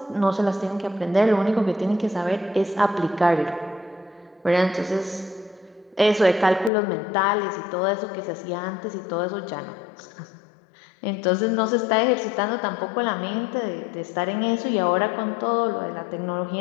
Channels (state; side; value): drops out; right; at 6.7 s